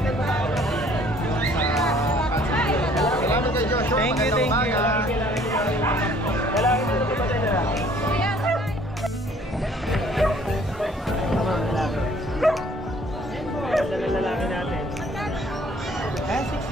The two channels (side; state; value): both; normal; correlation 0.58